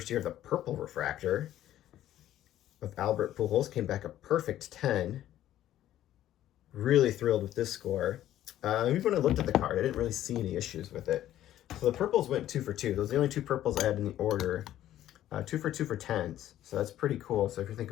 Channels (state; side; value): quieter; right; 12.7 dB